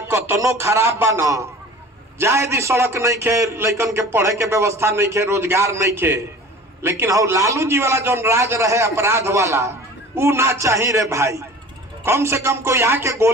कतनो खराब बा न जाए दी, सड़क नहीं खे, लड़कन के पढ़े के व्यवस्था नहीं खे, रोजगार नहीं खे, लेकिन हो लालू जी वाला जो राज रहे अपराध वाला ऊ ना चाहिए रे भाई। कम से कम कोई आके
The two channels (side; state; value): both; normal; correlation 0.41